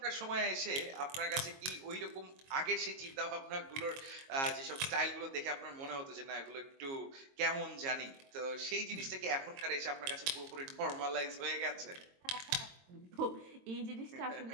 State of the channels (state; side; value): late; left; 22 ms